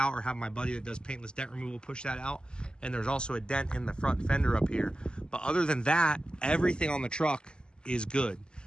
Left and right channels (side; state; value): right; late; 0.048 ms